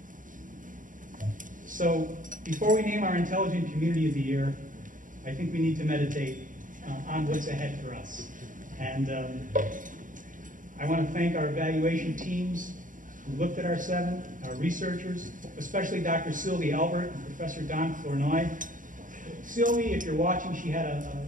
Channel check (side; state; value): left; late; 0.38 ms